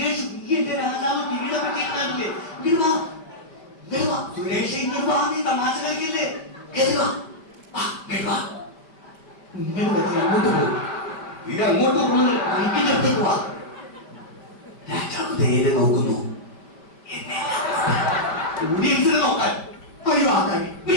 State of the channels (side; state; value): right; late; 5.1 ms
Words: നീ എന്റെ രാജാവ് കിരീടം പറ്റിയിട്ടില്ലേ? ഇങ്ങോട്ട് വാ, ഇങ്ങോട്ട് വാ സുരേഷ്, ഇങ്ങോട്ട് വാ. നീ തമാശ കളിക്കില്ലേ? അങ്ങോട്ട് പോകും, ഇത് അങ്ങോട്ട് പോകുന്നത് അടുത്തേക്ക് വാ. രാജാവ് നേരെ നോക്കുന്നു, ഓഡിയൻസിനെ നോക്കാൻ ഒഴിവാക്കാൻ.